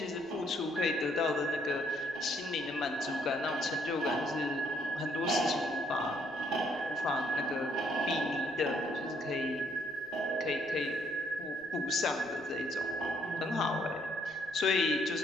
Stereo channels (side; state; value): right; noise; rumble, 28 dB below the sound